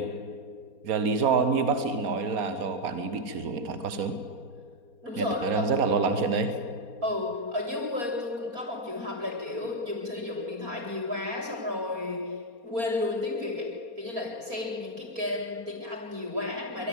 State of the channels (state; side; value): late; left; 4.3 ms